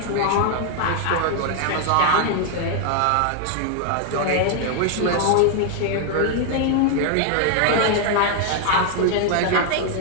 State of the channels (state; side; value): different; both; correlation 0.00